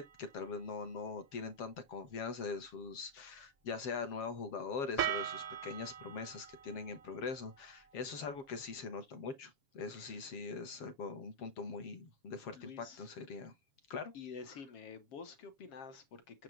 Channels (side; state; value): right; late; 7.3 ms